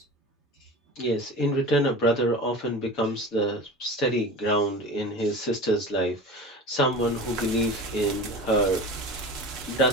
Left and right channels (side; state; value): both; normal; correlation 0.33